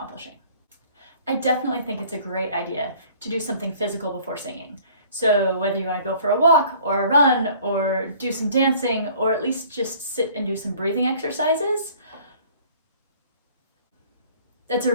I definitely think it's a great idea to do something physical before singing. So whether you want to go for a walk or a run or do some dancing or at least just sit and do some breathing exercises, that's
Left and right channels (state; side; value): inverted; both; correlation -0.53